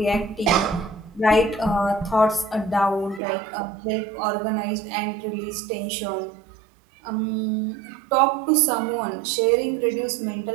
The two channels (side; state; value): left; drops out; at 3.2 s